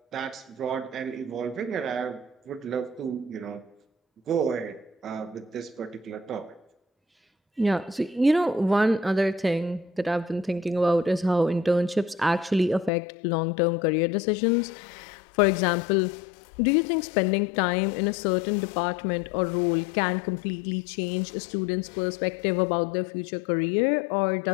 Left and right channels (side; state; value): right; drops out; at 12.9 s